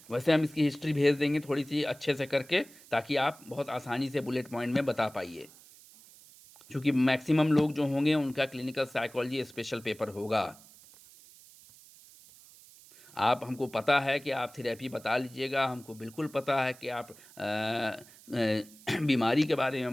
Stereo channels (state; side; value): noise; right; hiss, 23 dB below the sound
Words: वैसे हम इसकी हिस्ट्री भेज देंगे थोड़ी सी अच्छे से करके, ताकि आप बहुत आसानी से बुलेट पॉइंट में बता पाइए, क्योंकि मैक्सिमम लोग जो होंगे उनका क्लिनिकल साइकोलॉजी स्पेशल पेपर होगा। आप हमको पता है कि आप थेरेपी बता लीजिएगा, हमको बिल्कुल पता है कि आप बीमारी के बारे